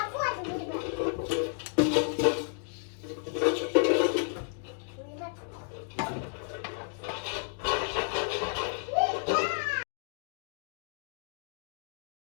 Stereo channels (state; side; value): silent; right; digital silence